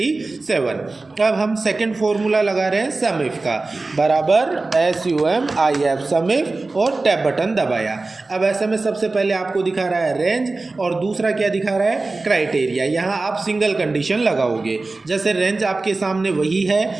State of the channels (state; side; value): quieter; left; 3.5 dB